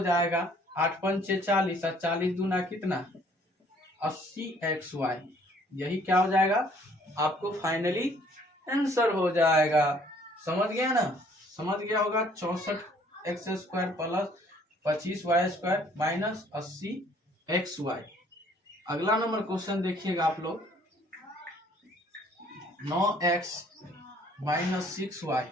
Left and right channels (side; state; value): both; normal; correlation 0.60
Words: जाएगा 8 पंचे 40, 40 दूना कितना 80xy। यही क्या हो जाएगा, आपको फाइनली आंसर हो जाएगा। समझ गया ना, समझ गया होगा। 64x square plus 25y square minus 80xy। अगला नंबर क्वेश्चन देखिएगा आप लोग, 9x माइनस 6y